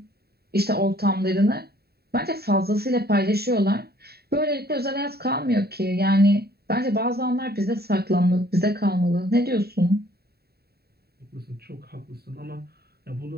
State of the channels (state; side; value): late; left; 0.46 ms